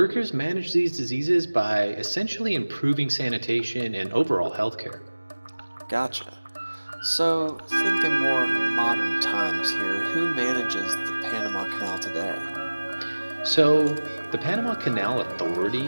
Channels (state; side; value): inverted; both; correlation -1.00